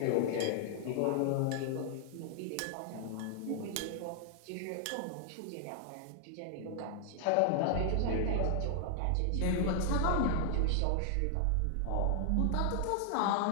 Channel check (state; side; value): different; both; correlation -0.01